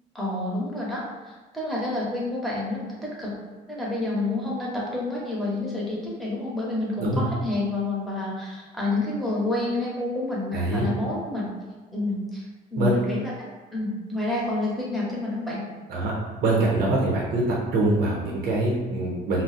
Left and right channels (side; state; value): both; normal; correlation 0.50